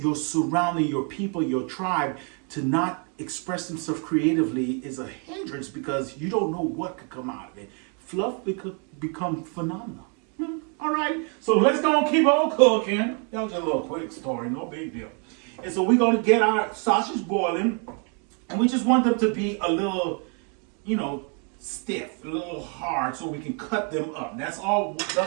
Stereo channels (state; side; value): quieter; left; 38.6 dB